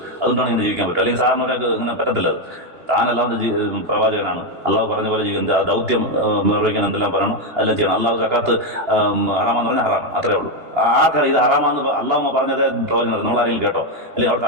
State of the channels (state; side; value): late; left; 2.9 ms